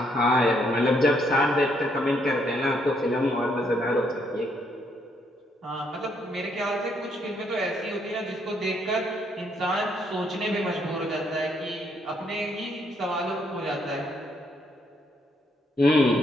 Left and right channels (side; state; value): both; normal; correlation 0.72